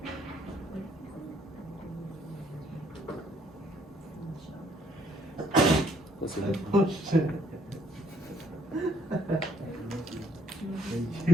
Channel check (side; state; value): both; normal; correlation 0.66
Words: Let's see. Oh shit.